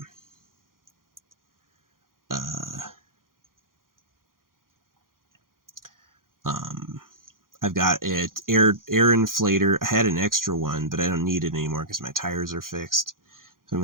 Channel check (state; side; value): late; left; 0.91 ms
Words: um, I've got it air inflator. I had an extra one, but I don't need it anymore because my tires are fixed. So I'm